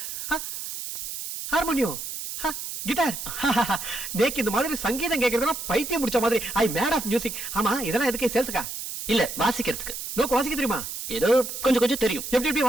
harmonium, guitar. நேக்கு இந்த மாதிரி சங்கீதம் கேட்கறதுனா பைத்தியம் முடிச்ச மாதிரி. I mad of music. ஆமா, இதெல்லாம் எதுக்கு? சேல்ஸுக்கா? இல்ல, வாசிக்கிறதுக்கு. நோக்கு வாசிக்க தெரியுமா? ஏதோ கொஞ்சம் தெரியும். எப்படி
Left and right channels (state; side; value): noise; right; hiss, 7 dB below the sound